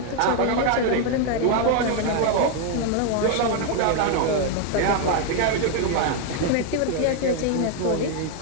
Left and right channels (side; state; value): both; different; correlation 0.01